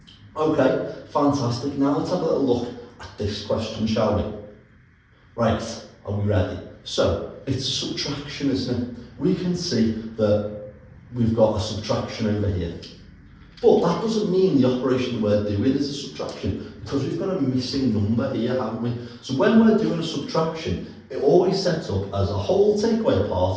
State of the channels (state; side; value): identical; both; correlation 1.00